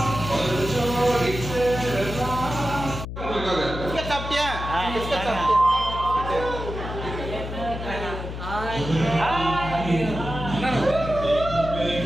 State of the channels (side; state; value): left; noise; hum, 7 dB below the sound